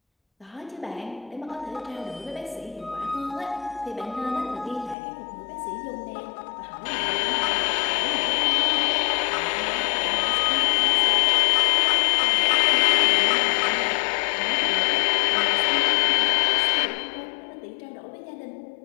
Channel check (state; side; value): drops out; right; at 5.0 s